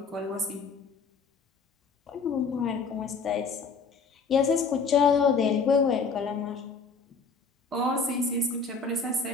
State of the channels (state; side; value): quieter; right; 4.8 dB